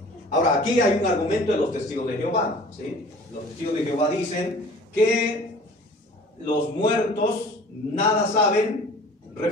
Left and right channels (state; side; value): normal; both; correlation 0.46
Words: Ahora, aquí hay un argumento de los testigos de Jehová, ¿sí? Los testigos de Jehová dicen que los muertos nada saben,